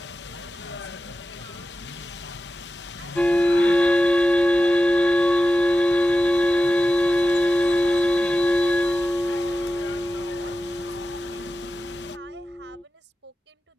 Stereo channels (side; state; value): both; normal; correlation 0.93